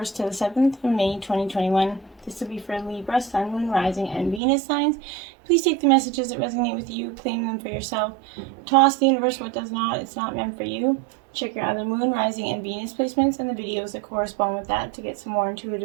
to the 7th of May 2021. This will be for Libra, Sun, Moon, Rising, and Venus signs. Please take the messages that resonate with you, claim them for yourself. Toss the universe what does not, it's not meant for you. Check your other Moon, Rising, and Venus placements and the videos that correspond with that to get some more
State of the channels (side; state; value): left; drops out; at 4.4 s